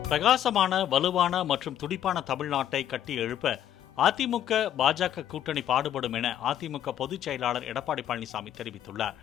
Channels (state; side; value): quieter; right; 11.0 dB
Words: பிரகாசமான, வலுவான மற்றும் துடிப்பான தமிழ்நாட்டை கட்டி எழுப்ப அதிமுக பாஜக கூட்டணி பாடுபடும் என அதிமுக பொதுச் செயலாளர் எடப்பாடி பழனிசாமி தெரிவித்துள்ளார்.